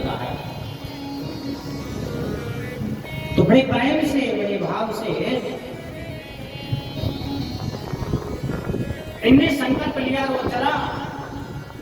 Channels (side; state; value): both; identical; correlation 1.00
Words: है। तो बड़े प्रेम से, बड़े भाव से इनने संकल्प लिया। वो चला